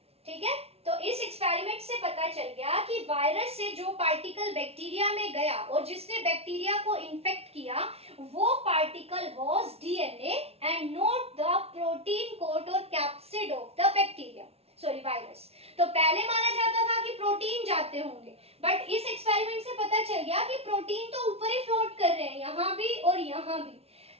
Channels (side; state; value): left; late; 0.30 ms